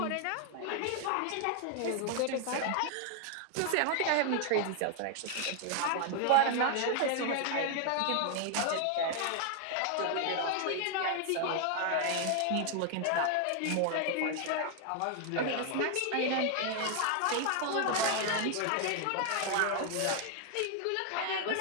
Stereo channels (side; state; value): both; different; correlation 0.00